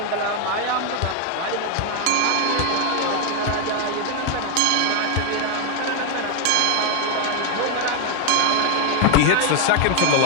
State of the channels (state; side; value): different; both; correlation 0.01